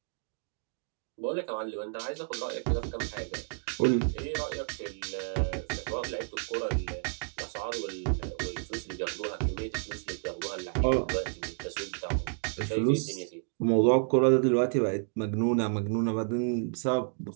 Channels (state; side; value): silent; left; digital silence